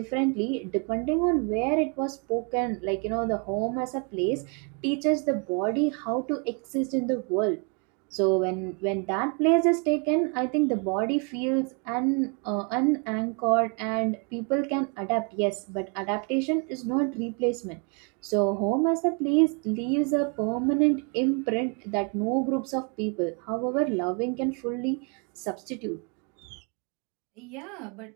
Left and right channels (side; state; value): left; quieter; 36.3 dB